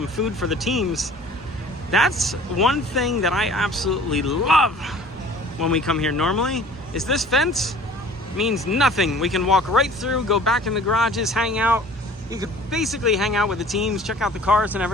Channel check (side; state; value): both; normal; correlation 0.48